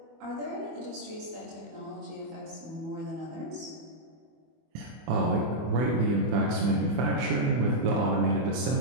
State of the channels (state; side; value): late; left; 24 ms